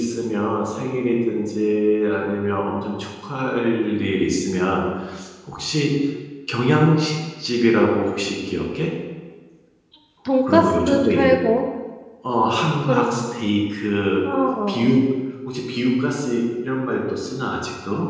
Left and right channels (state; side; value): identical; both; correlation 1.00